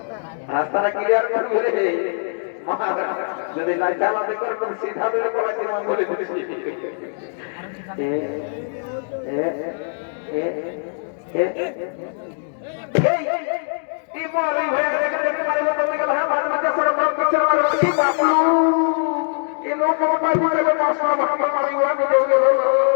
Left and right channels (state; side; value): silent; right; digital silence